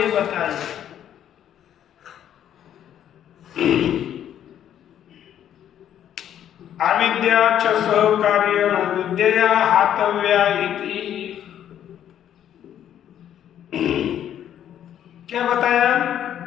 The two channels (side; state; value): right; quieter; 10.4 dB